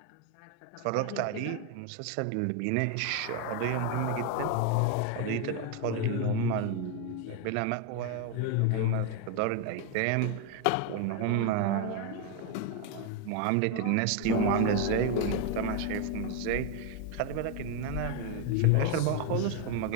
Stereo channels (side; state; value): both; different; correlation 0.01